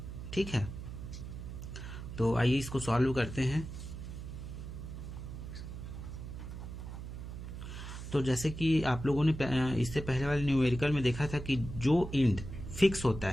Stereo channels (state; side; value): noise; right; hum, 9 dB below the sound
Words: ठीक है, तो आइए इसको सॉल्व करते हैं। तो जैसे कि आप लोगों ने इससे पहले वाले न्यूमेरिकल में देखा था कि जो एंड फिक्स होता